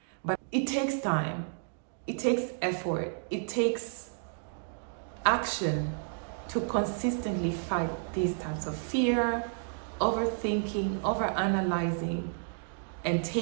but it takes time. It takes effort. It takes action to consistently fight these types of fear, overthinking, overanalyzing, and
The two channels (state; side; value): silent; left; digital silence